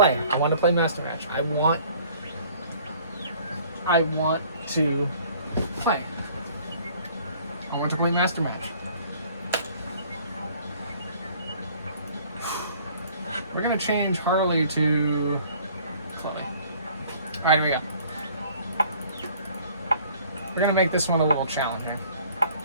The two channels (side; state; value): both; inverted; correlation -0.54